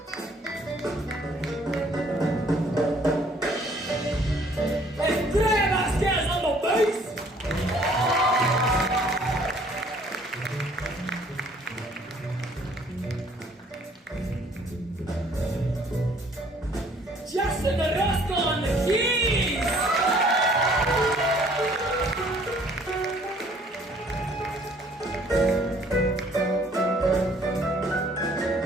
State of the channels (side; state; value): both; normal; correlation 0.59